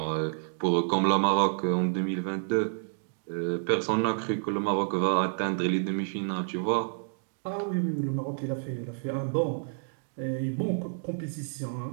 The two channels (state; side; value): silent; left; digital silence